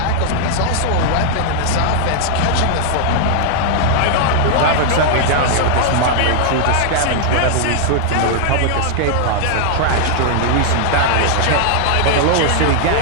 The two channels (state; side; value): different; both; correlation -0.01